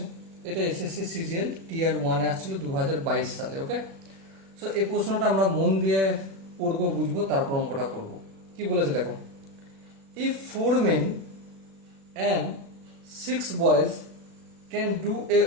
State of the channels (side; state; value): left; late; 36 ms